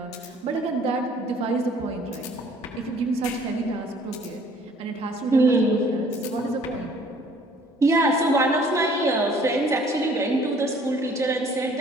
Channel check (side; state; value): both; normal; correlation 0.57